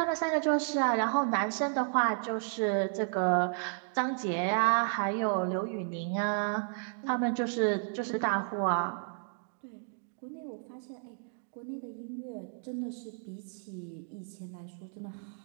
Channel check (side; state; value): left; silent; digital silence